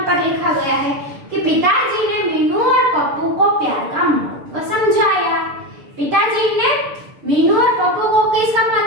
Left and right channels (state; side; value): late; left; 6.8 ms